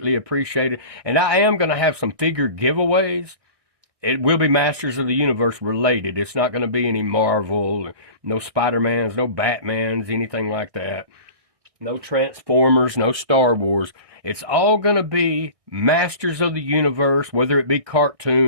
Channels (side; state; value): left; late; 1.6 ms